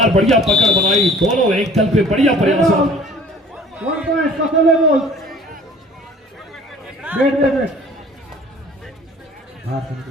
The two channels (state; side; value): normal; both; correlation 0.50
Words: बढ़िया पकड़ बनाई दोनों एंकल पे। बढ़िया प्रयास। 1 पॉइंट कफली बॉल। वेट